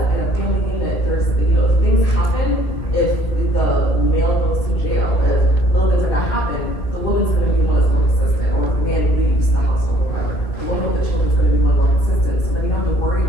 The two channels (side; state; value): right; late; 2.5 ms